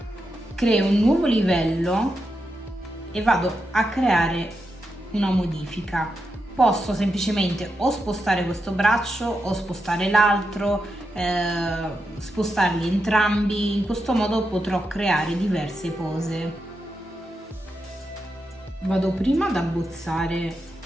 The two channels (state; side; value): normal; both; correlation 0.86